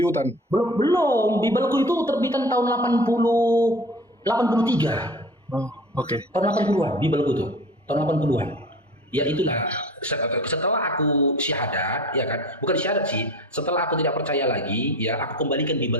hutan. Belum. Bibelku itu terbitan tahun 83. Oh, oke. Tahun 80-an, Bibelku tuh. Tahun 80-an. Ya itulah, setelah aku syahadat, ya kan, bukan syahadat sih, setelah aku tidak percaya lagi, ya aku kembalikan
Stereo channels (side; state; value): both; normal; correlation 0.39